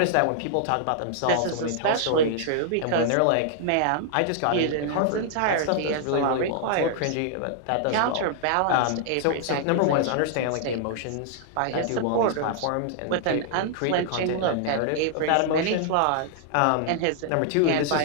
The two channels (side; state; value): both; different; correlation -0.01